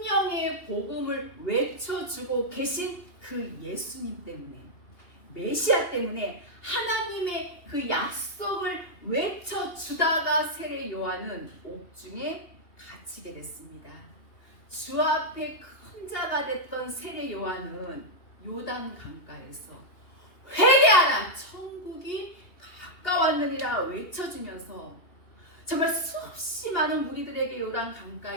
복음을 외쳐주고 계신 그 예수님 때문에, 메시아 때문에 하나님의 그 약속을 외쳐주다가 세례 요한은 옥중에 갇히게 됐습니다. 주 앞에 큰 자가 됐던 세례 요한은 요단 강가에서 회개하라, 천국이 가까웠느니라 외쳐주면서 정말 수없이 많은 무리들에게 요단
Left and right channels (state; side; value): late; right; 2.8 ms